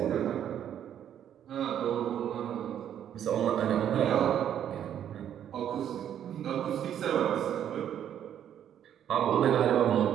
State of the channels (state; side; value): quieter; left; 9.9 dB